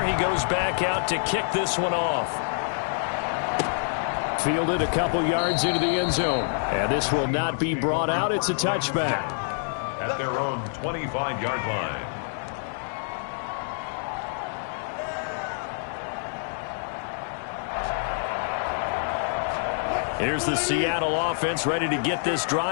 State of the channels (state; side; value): silent; right; digital silence